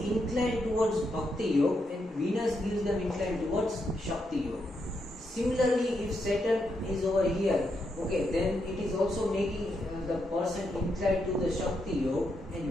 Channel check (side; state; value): both; normal; correlation 0.81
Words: inclined towards bhakti yoga, and Venus gives them inclined towards shakti yoga. Similarly, if Saturn is over here, okay, then it is also making the person inclined to the shakti yoga,